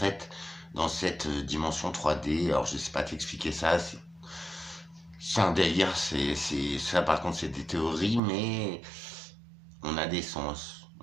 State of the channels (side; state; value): left; drops out; at 8.2 s